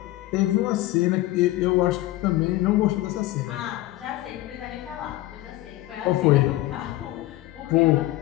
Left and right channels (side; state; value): right; quieter; 17.2 dB